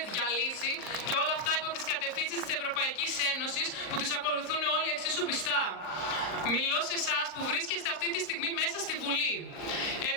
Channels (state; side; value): late; right; 38 ms